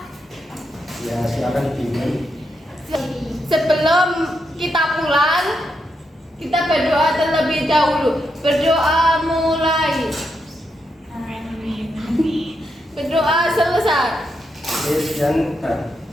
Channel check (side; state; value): both; normal; correlation 0.82